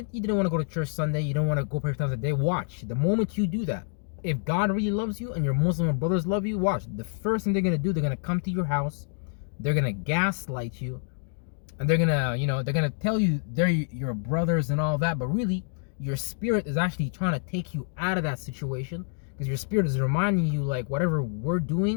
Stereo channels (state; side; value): silent; right; 59 dB below the other